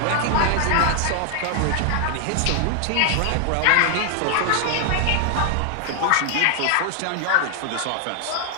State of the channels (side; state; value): both; different; correlation 0.00